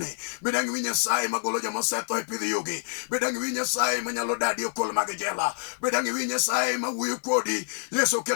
bedangi winji Nyasaye magolo joma osetho e pidh yugi, bedangi winji Nyasaye manyalo dadi okol mag jela, bedangi winji Nyasaye mawuoyo kodi. Yesu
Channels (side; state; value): right; silent; 60 dB below the other